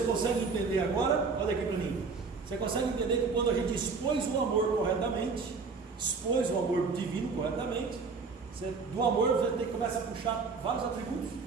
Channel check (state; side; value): quieter; left; 4.7 dB